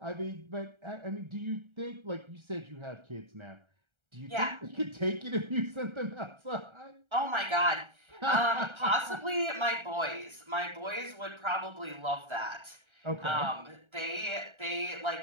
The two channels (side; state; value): left; late; 1.3 ms